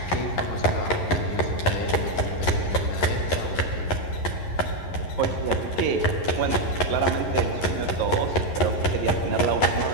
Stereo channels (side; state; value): right; late; 11 ms